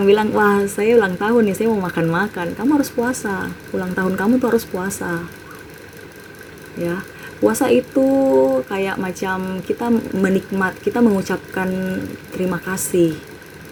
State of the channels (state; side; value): identical; both; correlation 1.00